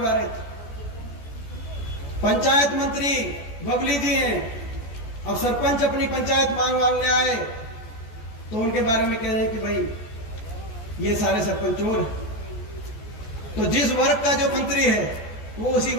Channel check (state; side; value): late; right; 14 ms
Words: रहे थे। पंचायत मंत्री बबली जी हैं, अब सरपंच अपनी पंचायत मांगने आए तो उनके बारे में कह रहे हैं कि भाई ये सारे सरपंच चोर हैं। तो जिस वर्ग का जो मंत्री है वो उसी